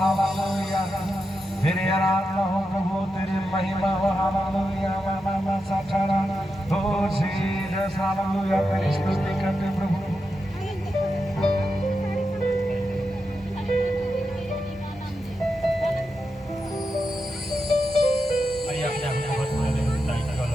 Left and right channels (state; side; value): normal; both; correlation 0.88